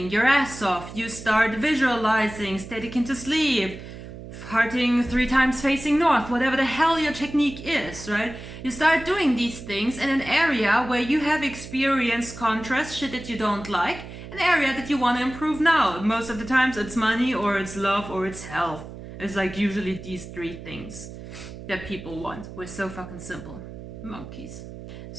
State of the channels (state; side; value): noise; right; hum, 13 dB below the sound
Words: your ass off. You start visualizing, static into sleep, farting 3 times facing north, whatever the hell your technique is, right? You start doing these things in an area where you have experienced contrast, shit that you don't like, an area that you want to improve now. Most of the times it's money or it's love or it's health. It's like usually these 3 things that people want. We're so fucking simple. Monkeys.